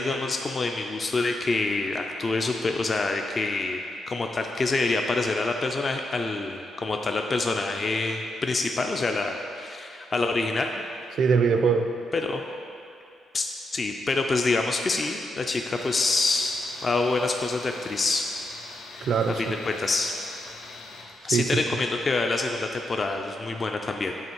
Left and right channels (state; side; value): normal; both; correlation 0.83